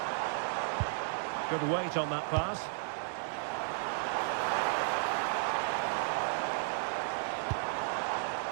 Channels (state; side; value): silent; left; 55 dB below the other